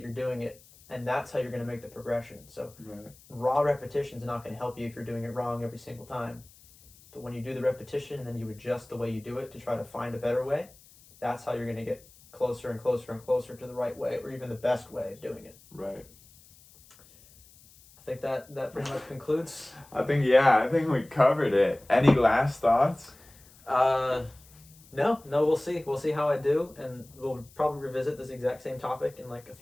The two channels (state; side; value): noise; left; hiss, 25 dB below the sound